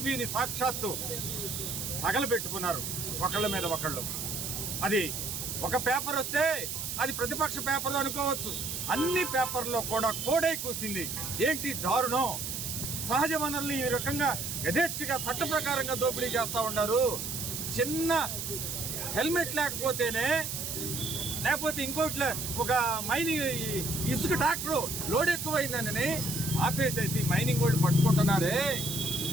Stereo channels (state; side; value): noise; right; hiss, 4 dB below the sound